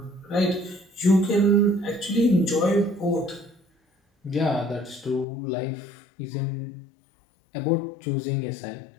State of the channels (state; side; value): drops out; right; at 5.2 s